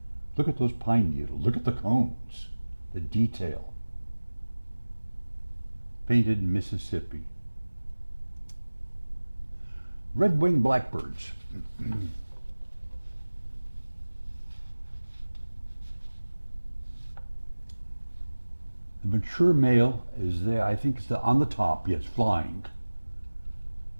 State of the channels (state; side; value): inverted; both; correlation -1.00